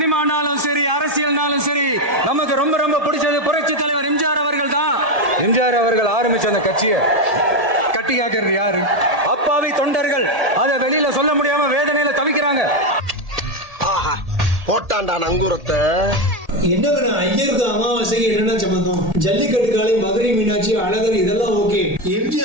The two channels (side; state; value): left; late; 1.7 ms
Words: சரி, அரசியல்னாலும் சரி, நமக்கு ரொம்ப ரொம்ப பிடிச்சது புரட்சி தலைவர் எம்ஜிஆர் அவர்கள் தான். எம்ஜிஆர் அவர்கள் ஆரம்பிச்ச அந்த கட்சியை கட்டி காக்கிறது யாரு? அப்பாவி தொண்டர்கள். அதை வெளியில சொல்ல முடியாம வேதனையில தவிக்கிறாங்க. போட்டாண்டா நங்கூரத்தை. என்னங்க ஐயருக்கு அமாவாசைக்கு என்ன சம்பந்தம்? ஜல்லிக்கட்டு காலை, மதுரை மீனாட்சி, அழகர் இதெல்லாம் ஓகே.